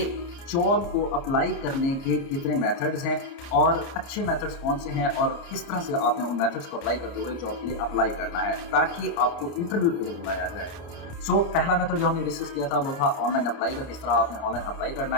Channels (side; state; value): right; late; 29 ms